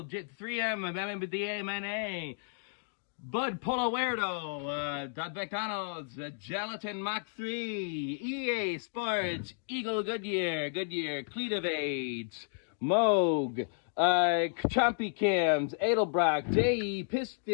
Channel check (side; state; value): right; silent; digital silence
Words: MMDA, Bud Polowerdo, McDonald's, Gelatin Mach 3, EA Sports, Eagle Goodyear, Cletovate, Moog, Chompy Cams, Edelbrock, JE,